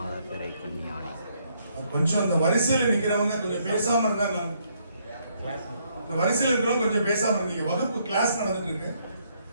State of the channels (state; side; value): inverted; both; correlation -0.71